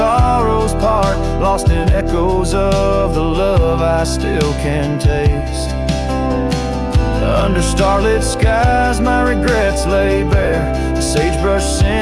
part. Lost in echoes of the love I still can taste. Under starlit skies my regrets lay bare. The sagebrush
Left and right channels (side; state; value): both; identical; correlation 1.00